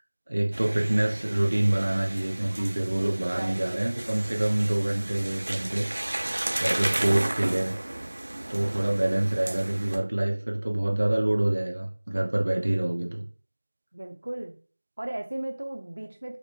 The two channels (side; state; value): both; inverted; correlation -1.00